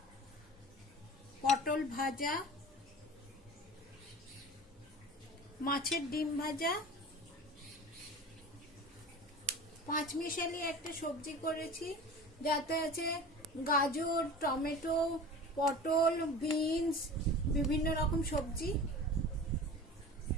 পটল ভাজা, মাছের ডিম ভাজা, পাঁচমিশালি একটা সবজি করেছি, যাতে আছে গাজর, টমেটো, পটল, বিনস, বিভিন্ন রকম সবজি।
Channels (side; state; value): both; normal; correlation 0.37